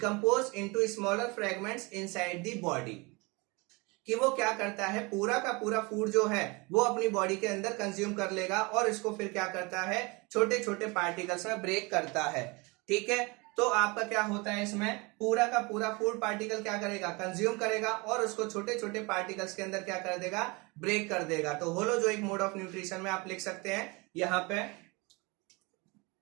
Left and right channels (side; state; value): left; quieter; 26.8 dB